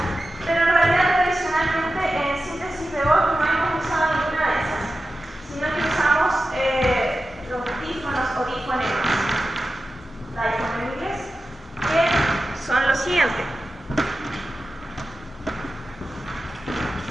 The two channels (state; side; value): normal; both; correlation 0.93